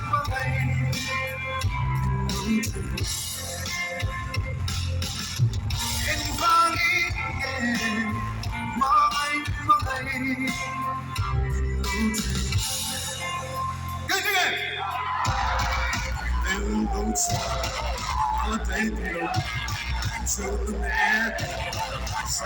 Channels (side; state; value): both; identical; correlation 1.00